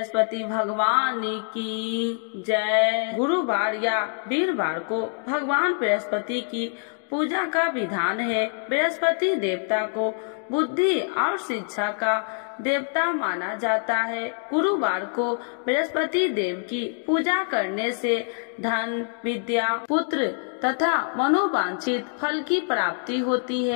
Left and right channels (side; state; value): right; silent; 58 dB below the other